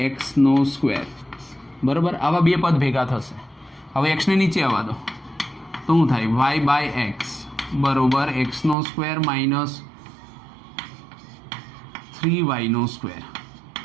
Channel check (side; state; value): left; drops out; at 8.8 s